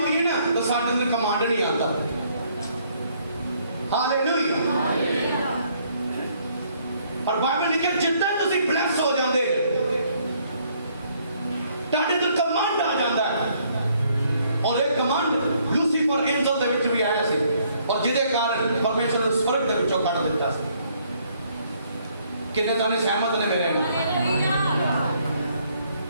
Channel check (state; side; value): inverted; both; correlation -0.67